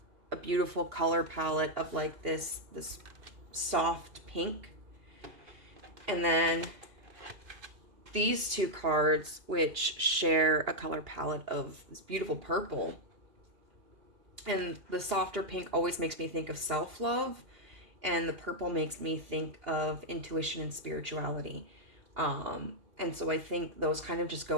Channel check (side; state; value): left; late; 2.8 ms